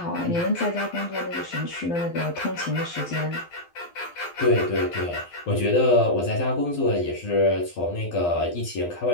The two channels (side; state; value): right; late; 12 ms